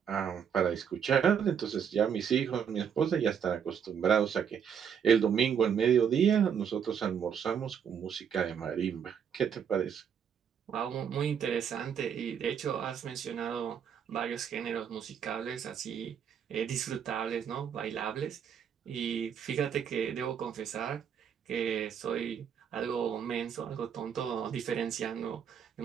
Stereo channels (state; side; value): quieter; left; 7.8 dB